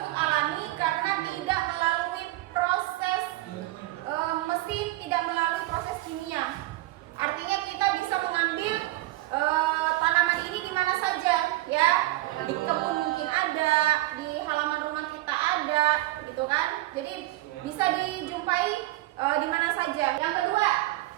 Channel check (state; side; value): quieter; left; 18.2 dB